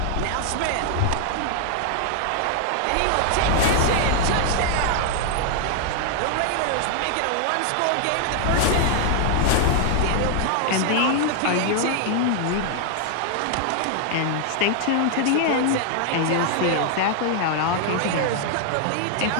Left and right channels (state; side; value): different; both; correlation 0.00